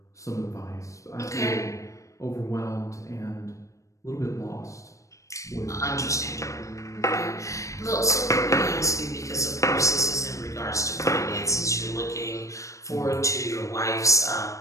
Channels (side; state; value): right; late; 0.15 ms